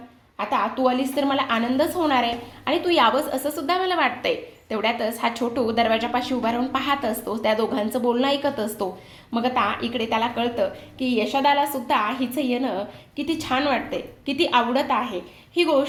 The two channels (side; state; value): both; identical; correlation 1.00